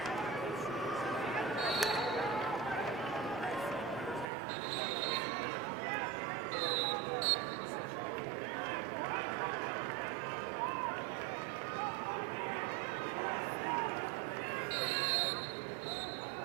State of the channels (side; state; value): left; drops out; at 4.2 s